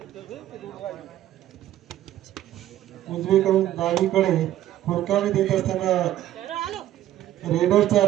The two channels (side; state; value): left; quieter; 12.9 dB